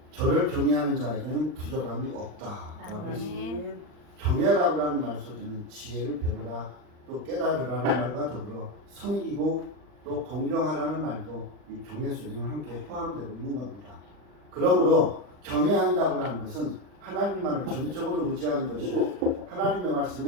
저를 경외하는 자에게는 부족함이 없다라고 했습니다. 경외라고 하는 말 속에는 지혜를 배우라, 또 깨달으라는 말과 더불어 섬기고 또 공경하라는 말도 이 경외 속에는 함께 포함되어 있는 겁니다. 그러므로 경외한다고 하는 것은 하나님만을 전적으로 의지하는 것이고 하나님의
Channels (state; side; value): late; left; 39 ms